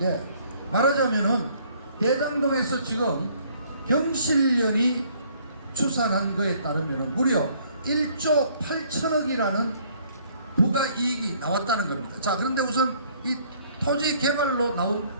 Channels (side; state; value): both; inverted; correlation -0.61